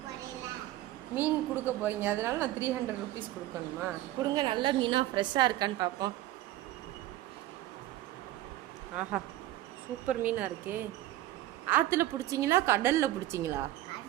மீன் கொடுக்க போறீங்க, அதனால நான் 300 ருபீஸ் கொடுக்கணுமா? கொடுங்க, நல்ல மீனாக ஃப்ரெஷ்ஷாக இருக்கான்னு பார்ப்போம். ஆஹா, சூப்பர் மீனாக இருக்கே. ஆற்றுல பிடிச்சிங்களா கடலில் பிடிச்சிங்களா?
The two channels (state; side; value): quieter; left; 15.2 dB